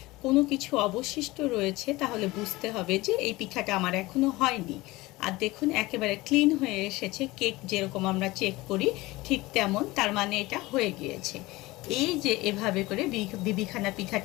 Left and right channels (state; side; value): quieter; right; 20.3 dB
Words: কোনো কিছু অবশিষ্ট রয়েছে তাহলে বুঝতে হবে যে এই পিঠাটা আমার এখনো হয়নি। আর দেখুন একেবারে ক্লিন হয়ে এসেছে, কেক যেরকম আমরা চেক করি ঠিক তেমন, তার মানে এটা হয়ে গিয়েছে। এই যে এভাবে করে বিবিখানা